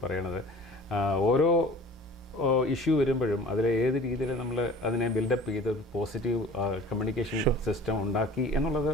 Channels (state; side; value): normal; both; correlation 0.44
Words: പറയണത്. ഓരോ ഇഷ്യൂ വരുമ്പോഴും അതിൽ ഏത് രീതിയിൽ നമ്മൾ അതിനെ ബിൽഡപ്പ് ചെയ്ത് പോസിറ്റീവ് കമ്മ്യൂണിക്കേഷൻ സിസ്റ്റം ഉണ്ടാക്കി എന്നുള്ളത്